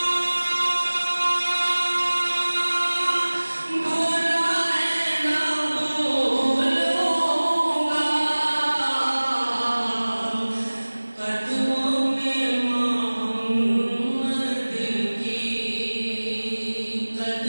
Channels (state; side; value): inverted; both; correlation -1.00